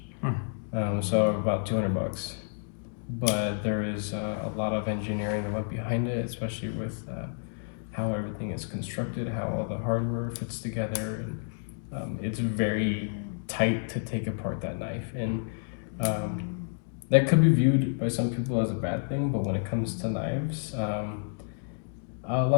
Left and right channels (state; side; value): silent; right; digital silence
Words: So about $200. But there is a lot of engineering that went behind it, especially with how everything is constructed, how all the hardware fits together, and it's very tight to take apart that knife. And that could be viewed by some people as a bad thing, but when it comes to knives, a